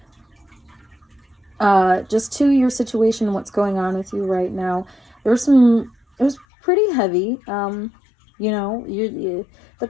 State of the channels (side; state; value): right; drops out; at 6.5 s